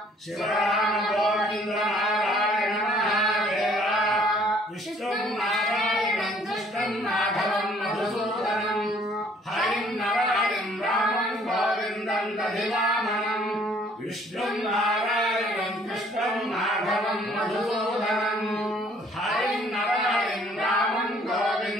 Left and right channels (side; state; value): both; normal; correlation 0.60